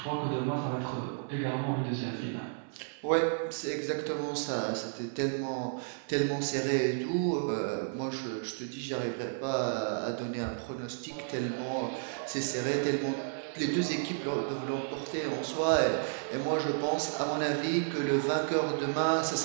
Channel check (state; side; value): silent; left; digital silence